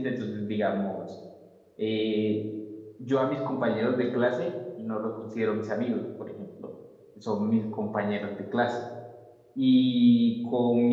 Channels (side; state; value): both; identical; correlation 1.00